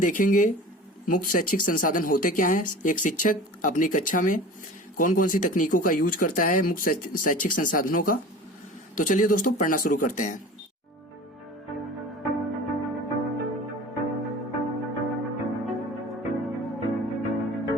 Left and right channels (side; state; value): both; normal; correlation 0.39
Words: मुक्त शैक्षिक संसाधन होते क्या हैं, एक शिक्षक अपनी कक्षा में कौन कौन सी तकनीकों का यूज करता है मुक्त शैक्षिक संसाधनों का। तो चलिए दोस्तों, पढ़ना शुरू करते हैं।